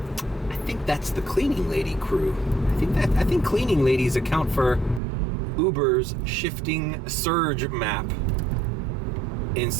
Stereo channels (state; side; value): drops out; left; at 5.0 s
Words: I think that's the cleaning lady crew. I think cleaning ladies account for Uber's shifting surge map in